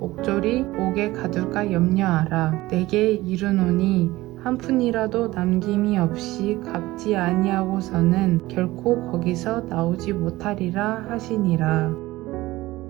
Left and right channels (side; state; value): left; quieter; 18.3 dB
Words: 옥에 가둘까 염려하라. 내게 이르노니 한 푼이라도 남김이 없이 갚지 아니하고서는 결코 거기서 나오지 못하리라 하시니라.